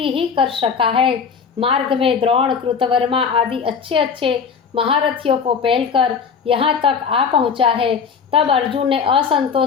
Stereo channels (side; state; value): right; quieter; 6.2 dB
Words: ही कर सका है। मार्ग में द्रोण, कृतवर्मा आदि अच्छे अच्छे महारथियों को पहलकर यहाँ तक आ पहुँचा है। तब अर्जुन ने